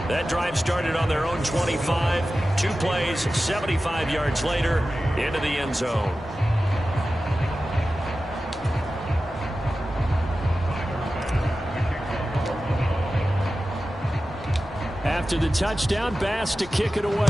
That drive started on their own 25. 2 plays, 75 yards later, into the end zone. After the touchdown, Bass to kick it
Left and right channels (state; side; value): normal; both; correlation 0.94